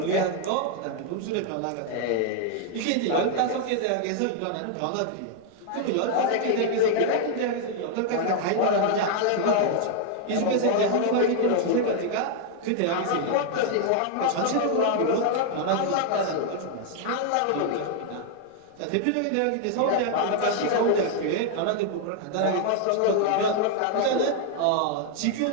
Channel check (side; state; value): both; different; correlation 0.00